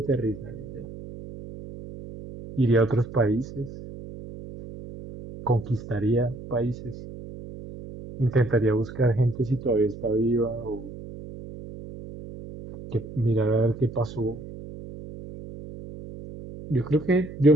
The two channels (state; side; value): noise; right; hum, 13 dB below the sound